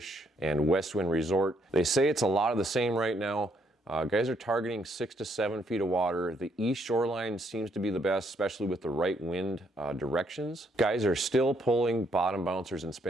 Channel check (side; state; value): both; normal; correlation 0.71